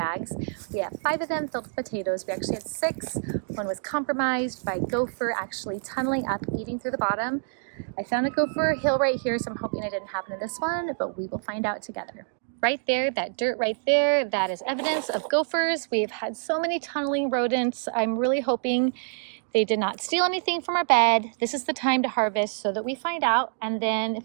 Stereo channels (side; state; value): left; silent; digital silence